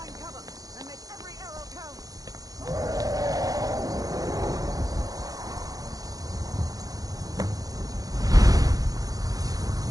cover and make every arrow count.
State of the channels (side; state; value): left; late; 0.18 ms